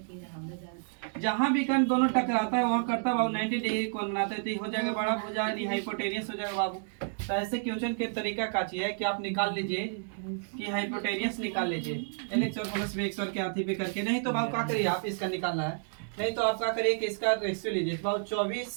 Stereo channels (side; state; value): left; silent; digital silence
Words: जहां विकर्ण दोनों टकराता है वहां करता बाबू 90 डिग्री कोण बनाता है, तो ये हो जाएगा बड़ा भुजा यानी हाइपोटेनियस हो जाएगा बाबू। तो ऐसे क्वेश्चन के तरीका का चाहिए कि आप निकाल लीजिए कि हाइपोटेनियस निकाल लीजिए, LX और प्लस BX और के हाथी पे करके, नहीं तो बाबू क्या करिए आप इसका निकालना है, नहीं तो आप क्या करिए कि इसका रेशियो लीजिए बाबू,